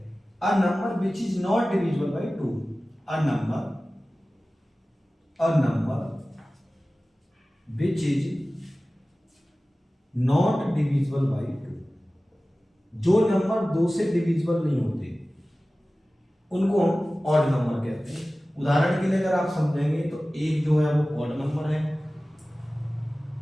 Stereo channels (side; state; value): both; normal; correlation 0.97